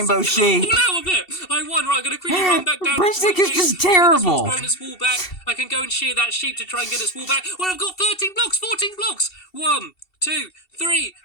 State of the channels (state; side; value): late; right; 2.7 ms